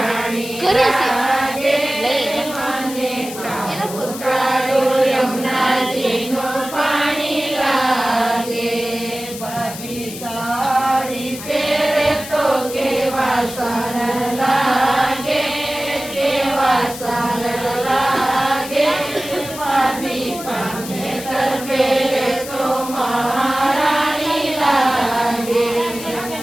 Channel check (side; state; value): left; noise; hiss, 11 dB below the sound